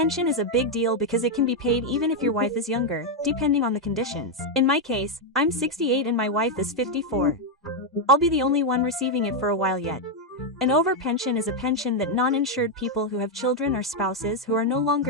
is a big deal because it can be paid even if your wife is younger, depending on the conditions. In my case, I'm 68 and my wife is 54. I'll be the only one receiving it for a while yet. An over-pension is a pension that non-insured people who have children or spouses who are no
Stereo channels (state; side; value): normal; both; correlation 0.02